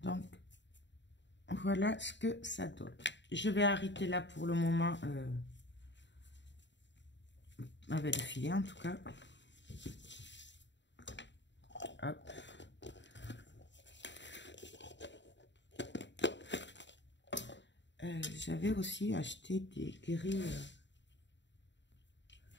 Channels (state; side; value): late; right; 0.52 ms